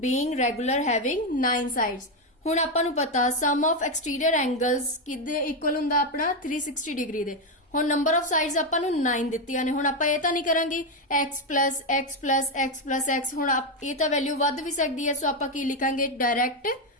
regular having 9 sides ਹੁਣ ਆਪਾਂ ਨੂੰ ਪਤਾ ਸਮ ਆਫ ਐਕਸਟੀਰੀਅਰ ਐਂਗਲਸ ਕਿਹਦੇ ਇਕੁਅਲ ਹੁੰਦਾ ਆਪਣਾ 360 ਡਿਗਰੀ ਦੇ ਹੁਣ ਨੰਬਰ ਆਫ ਸਾਈਡਸ ਆਪਾਂ ਨੂੰ 9 ਦਿੱਤੀਆਂ ਨੇ ਹੁਣ ਆਪਾਂ ਇਹ ਤਾਂ ਨਹੀਂ ਕਰਾਂਗੇ x ਹੁਣ ਇਹ ਤਾਂ ਵੈਲਿਊ ਵੱਧ ਵੀ ਸਕਦੀ ਹੈ ਸੋ ਆਪਾਂ ਕੀ ਲਿਖਾਂਗੇ direct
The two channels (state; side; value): normal; both; correlation 0.07